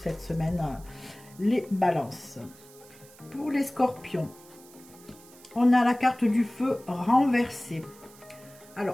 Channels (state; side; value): noise; right; hiss, 23 dB below the sound